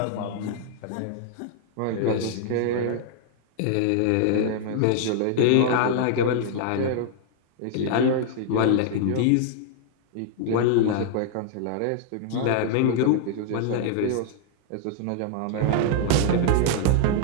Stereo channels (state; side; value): different; both; correlation 0.00